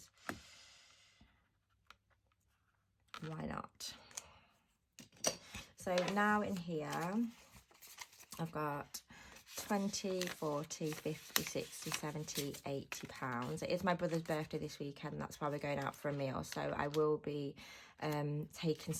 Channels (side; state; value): both; identical; correlation 1.00